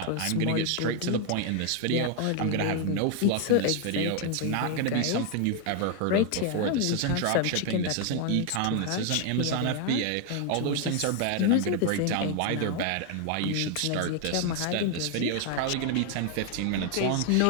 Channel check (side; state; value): both; different; correlation 0.00